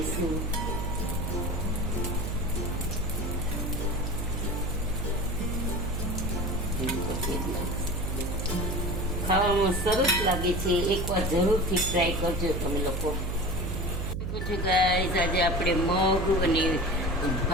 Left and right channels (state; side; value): noise; right; hum, 2 dB below the sound